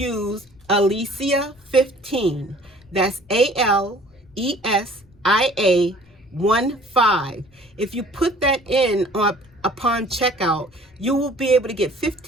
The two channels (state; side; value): noise; left; rumble, 29 dB below the sound